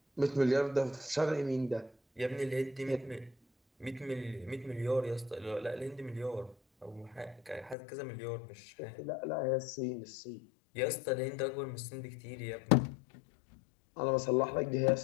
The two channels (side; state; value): right; drops out; at 7.8 s